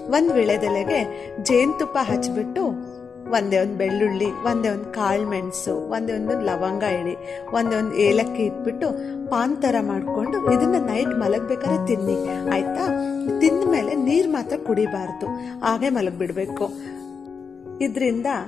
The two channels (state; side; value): quieter; right; 5.8 dB